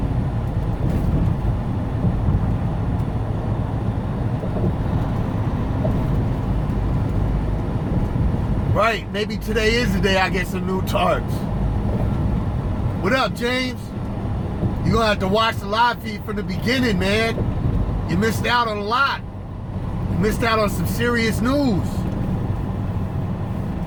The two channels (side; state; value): both; identical; correlation 1.00